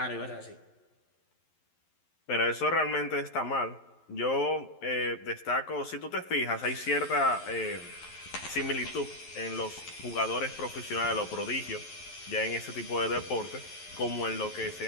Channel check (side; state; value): right; late; 11 ms